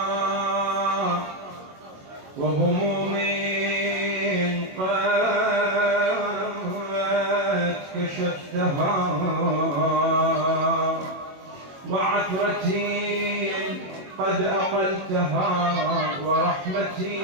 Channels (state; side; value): late; left; 21 ms